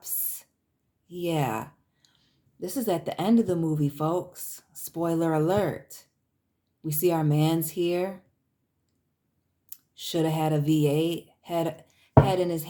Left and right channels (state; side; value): identical; both; correlation 1.00